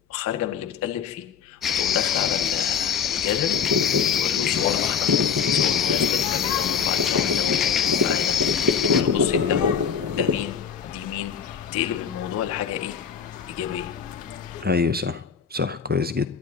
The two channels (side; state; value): right; quieter; 7.0 dB